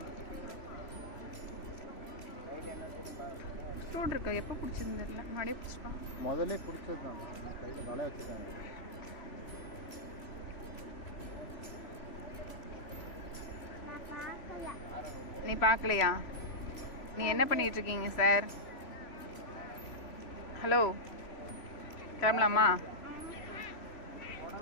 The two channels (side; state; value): right; late; 3.0 ms